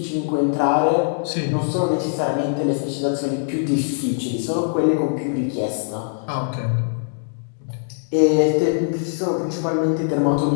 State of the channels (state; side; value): silent; right; digital silence